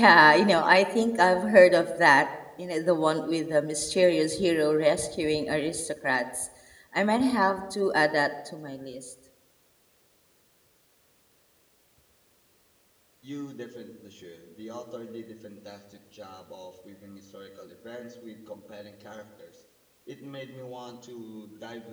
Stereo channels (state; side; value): identical; both; correlation 1.00